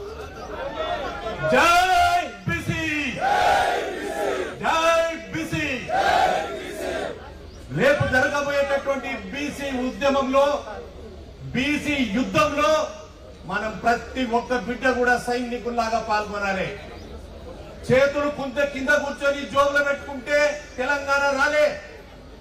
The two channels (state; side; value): identical; both; correlation 1.00